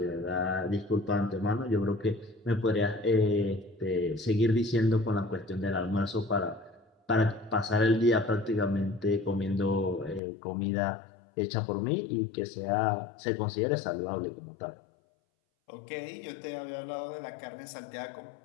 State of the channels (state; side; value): drops out; right; at 10.2 s